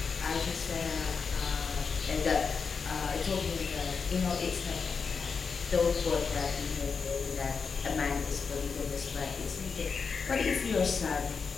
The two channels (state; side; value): quieter; right; 5.5 dB